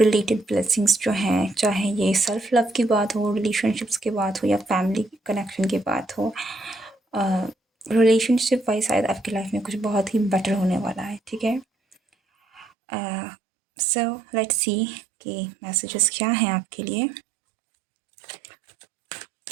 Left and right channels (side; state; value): left; drops out; at 12.7 s